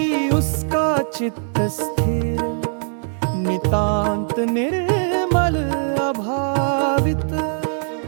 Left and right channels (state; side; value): silent; left; 65 dB below the other